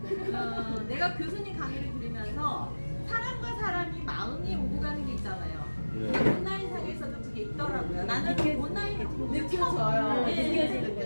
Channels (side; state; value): both; inverted; correlation -1.00